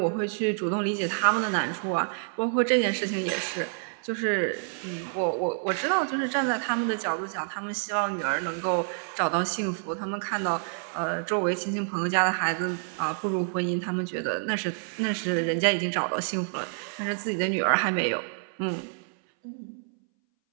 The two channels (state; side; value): silent; left; 59 dB below the other